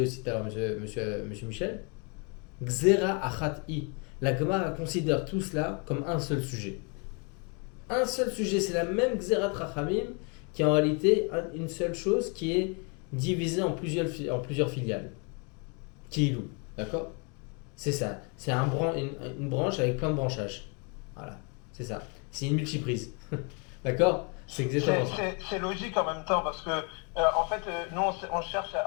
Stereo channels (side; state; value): right; quieter; 33.8 dB